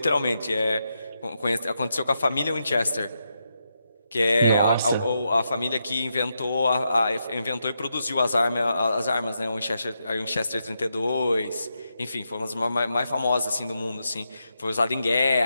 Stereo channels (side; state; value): both; inverted; correlation -0.84